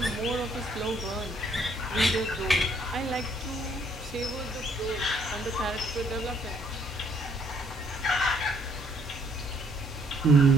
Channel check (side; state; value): both; normal; correlation 0.66